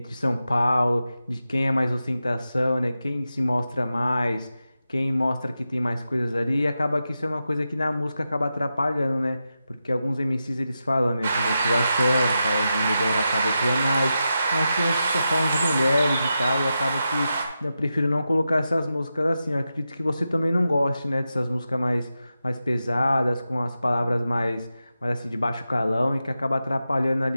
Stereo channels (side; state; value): both; inverted; correlation -0.89